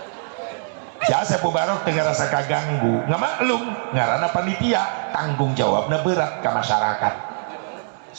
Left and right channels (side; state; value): left; silent; 64 dB below the other